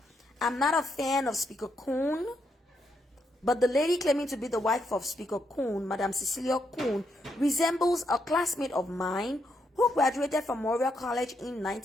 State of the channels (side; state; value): both; normal; correlation 0.79